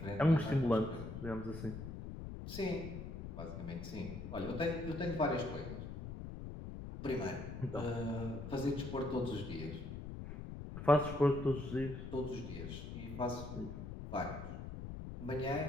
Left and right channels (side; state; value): left; noise; rumble, 8 dB below the sound